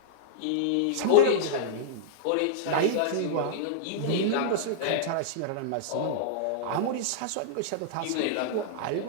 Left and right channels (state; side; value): different; both; correlation -0.02